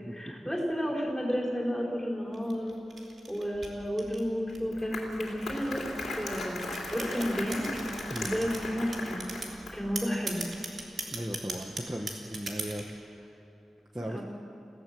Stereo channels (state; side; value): normal; both; correlation 0.94